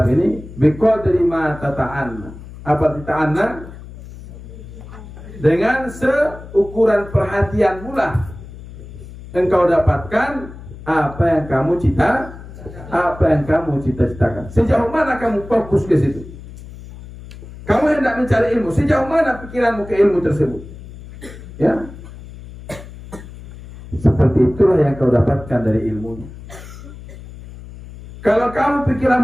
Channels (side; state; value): left; noise; hum, 15 dB below the sound